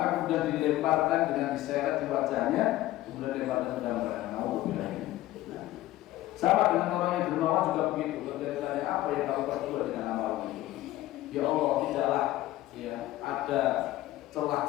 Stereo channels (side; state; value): right; quieter; 15.9 dB